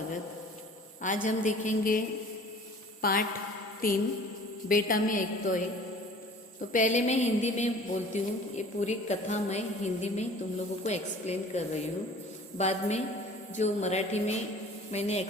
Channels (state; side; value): normal; both; correlation 0.47